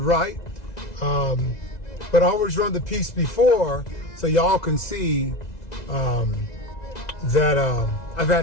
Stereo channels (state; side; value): late; right; 2.0 ms